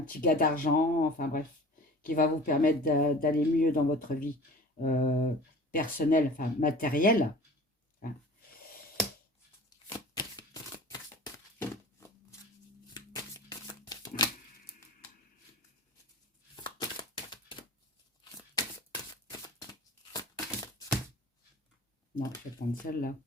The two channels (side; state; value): both; normal; correlation 0.41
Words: gars d'argent, enfin bref, qui va vous permettre d'aller mieux dans votre vie personnelle, enfin matérielle, hein. Non, je vais prendre celle-là.